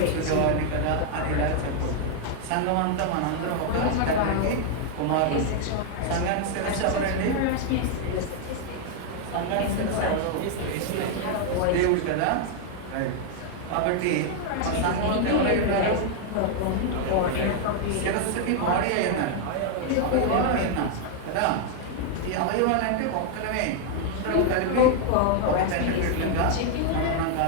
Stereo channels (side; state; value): both; different; correlation 0.00